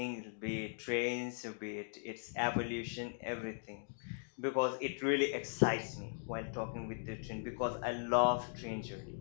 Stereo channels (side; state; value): right; silent; digital silence